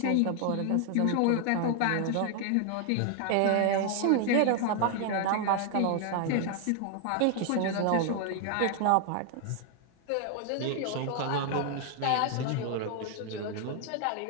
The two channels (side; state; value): both; different; correlation 0.00